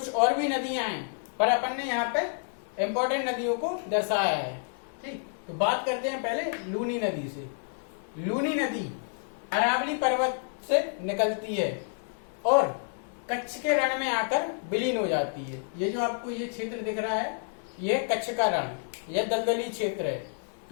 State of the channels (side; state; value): right; silent; 58 dB below the other